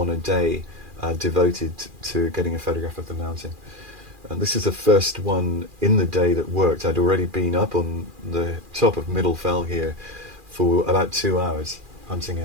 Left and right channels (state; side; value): late; left; 2.4 ms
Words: a day devoted to getting a photograph of the mountain. And this is the first one in the day that worked. I'd already been up on the top of Middle Fell here for about 2 hours hunting